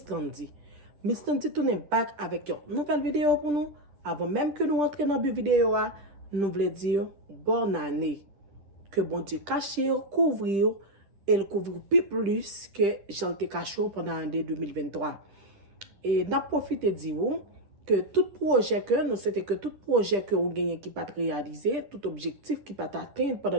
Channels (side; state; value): left; late; 10 ms